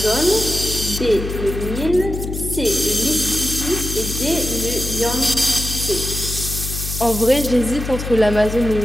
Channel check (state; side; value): noise; left; hum, 6 dB below the sound